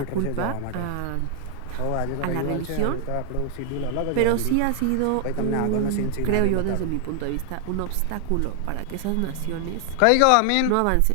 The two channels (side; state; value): both; different; correlation 0.00